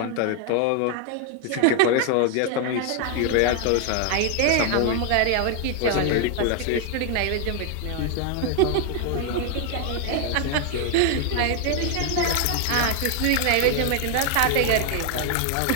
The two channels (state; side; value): different; both; correlation 0.00